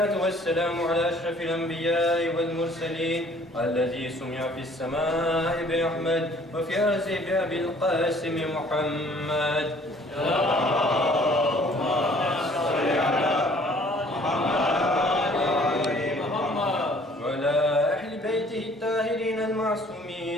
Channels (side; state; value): both; normal; correlation 0.56